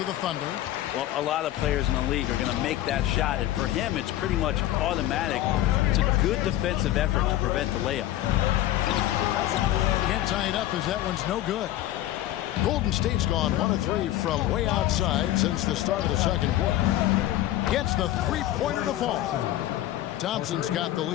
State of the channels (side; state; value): right; quieter; 14.0 dB